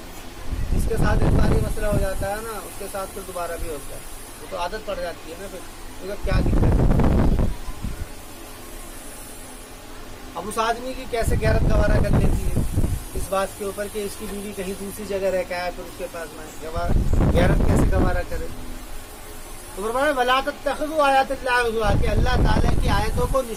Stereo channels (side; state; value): both; identical; correlation 1.00